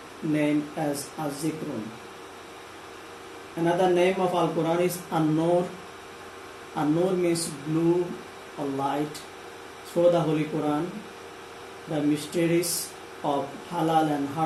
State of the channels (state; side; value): identical; both; correlation 1.00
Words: named as Az-Zikrun. Another name of Al-Quran is An-Nur. An-Nur means blue or light. Through the Holy Quran, the mysteries of halal and